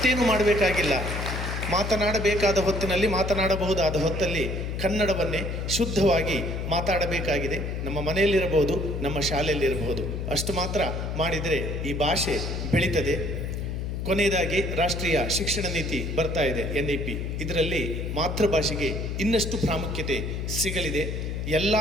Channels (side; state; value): left; noise; hum, 3 dB below the sound